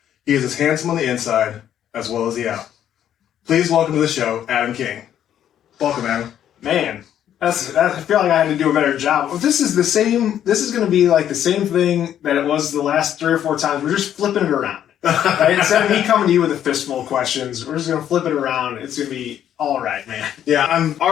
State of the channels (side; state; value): right; quieter; 10.4 dB